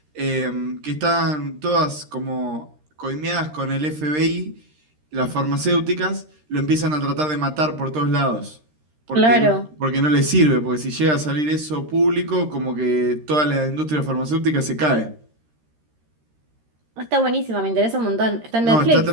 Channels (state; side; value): late; left; 13 ms